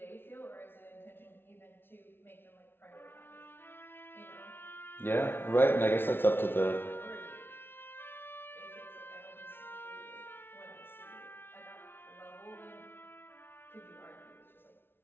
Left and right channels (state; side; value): late; right; 0.11 ms